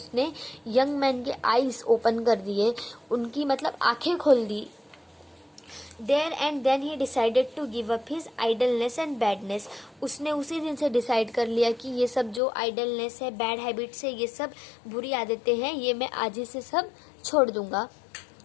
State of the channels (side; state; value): right; drops out; at 12.4 s